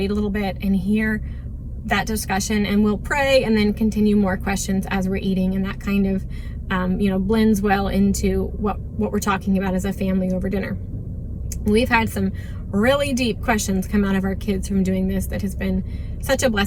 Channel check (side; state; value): both; identical; correlation 1.00